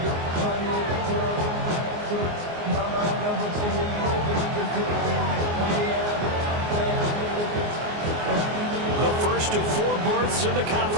The first of 4 berths in the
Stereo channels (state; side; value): late; left; 24 ms